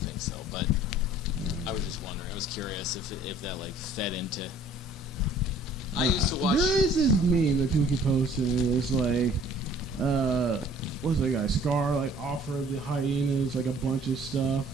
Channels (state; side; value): normal; both; correlation 0.54